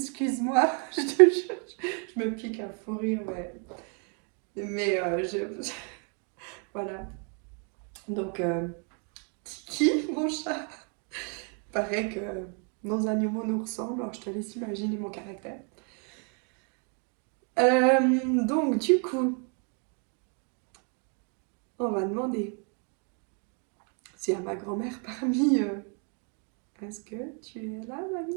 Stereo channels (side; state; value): left; quieter; 39.7 dB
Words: je te jure, je me pique un fou rire, mais voilà. Donc, Tiki, mon chat, paraît que nos animaux nous ressemblent, alors je te laisse imaginer mon caractère. Donc, du coup, on va demander s'il y a ma grand-mère parmi eux. Est-ce que tu es là,